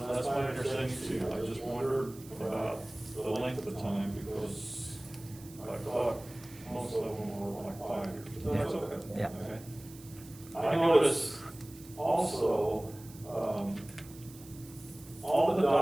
that's my understanding too. I just wondered about the length of time because I thought most of them were like 5 years. But that's okay. Yeah. Okay. I noticed also, all the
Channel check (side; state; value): right; noise; hiss, 20 dB below the sound